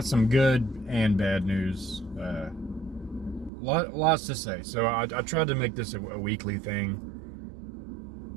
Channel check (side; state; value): left; drops out; at 3.5 s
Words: some good and bad news. Lots to say. So I tried to make this a weekly thing.